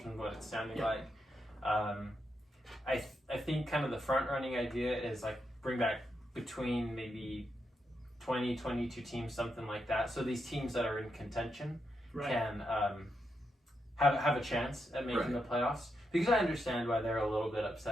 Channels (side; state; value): both; normal; correlation 0.83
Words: what it's sounding like. I think kind of the front running idea is like bring back between maybe 20, 22 teams, something like that. So these teams that are in contention can have a chance at making the playoffs. Because I understand why they're a little bit